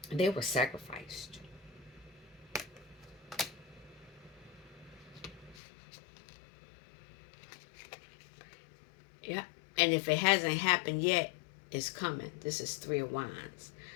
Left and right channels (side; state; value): right; drops out; at 5.6 s